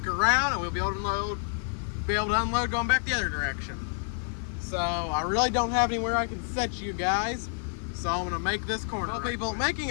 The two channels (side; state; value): right; silent; digital silence